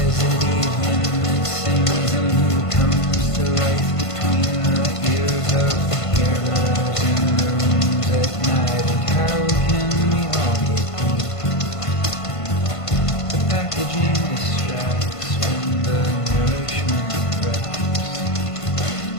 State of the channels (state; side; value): late; right; 1.5 ms